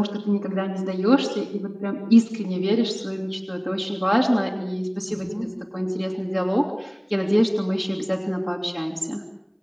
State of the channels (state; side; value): identical; both; correlation 1.00